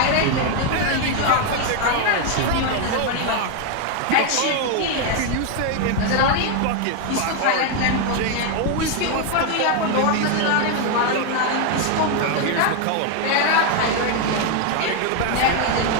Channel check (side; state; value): both; different; correlation 0.01